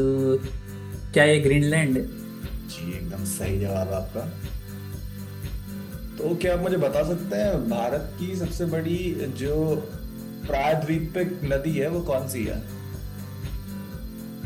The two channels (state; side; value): identical; both; correlation 1.00